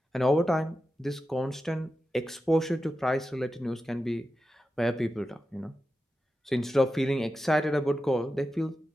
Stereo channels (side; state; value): both; normal; correlation 0.91